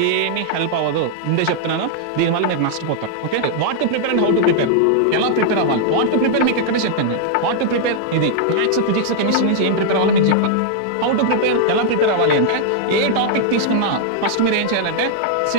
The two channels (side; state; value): both; different; correlation -0.01